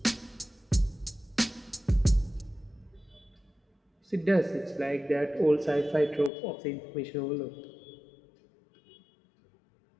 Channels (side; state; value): right; drops out; at 6.3 s